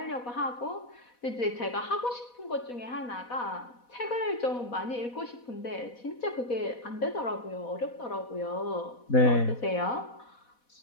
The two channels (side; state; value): right; late; 4.1 ms